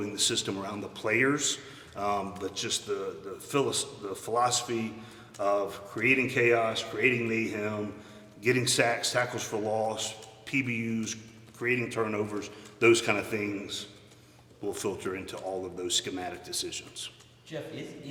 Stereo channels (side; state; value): both; identical; correlation 1.00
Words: the system around the players, but just the philosophy of creating chaos, creating mayhem, getting sacks, tackles for loss, PBUs, creating turnovers, those kind of things will filter into all of those schematic decisions. Geoff,